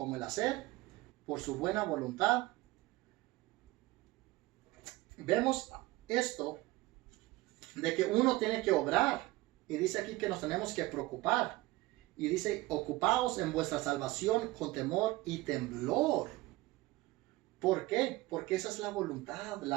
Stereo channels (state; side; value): quieter; left; 19.6 dB